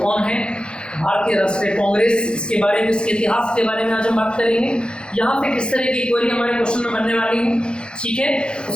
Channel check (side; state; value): right; late; 0.052 ms